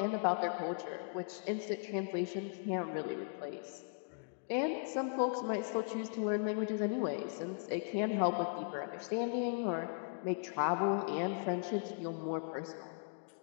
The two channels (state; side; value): silent; right; digital silence